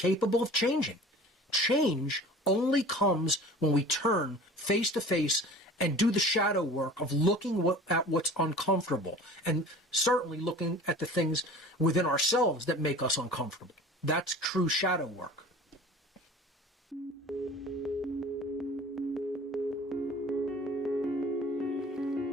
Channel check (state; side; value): normal; both; correlation 0.43